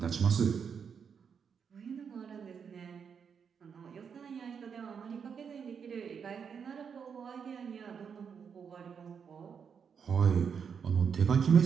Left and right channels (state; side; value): quieter; left; 6.7 dB